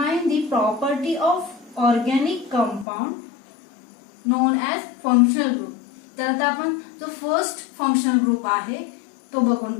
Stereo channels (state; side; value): drops out; right; at 2.9 s